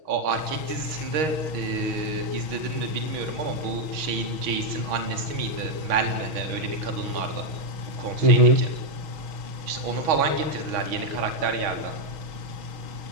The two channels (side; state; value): left; late; 6.3 ms